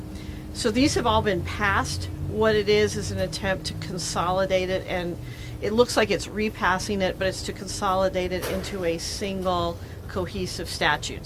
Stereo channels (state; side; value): identical; both; correlation 1.00